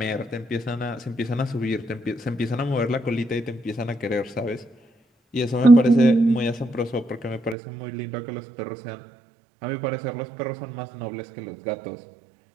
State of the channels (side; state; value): left; drops out; at 7.6 s